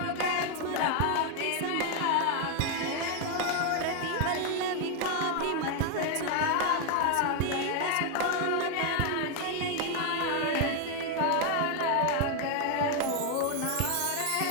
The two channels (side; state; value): both; different; correlation 0.01